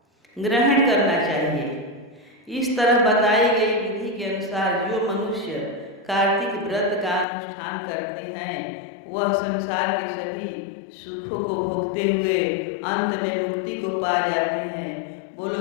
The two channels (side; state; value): right; drops out; at 7.2 s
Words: ग्रहण करना चाहिए। इस तरह बताई गई विधि के अनुसार जो मनुष्य कार्तिक व्रत का अनुष्ठान करते हैं वह संसार के सभी सुखों को भोगते हुए अंत में मुक्ति को पा जाते हैं। बोलो